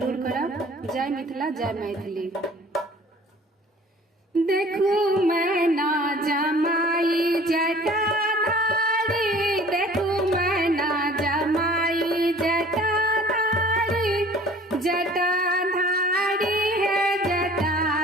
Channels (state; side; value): normal; both; correlation 0.49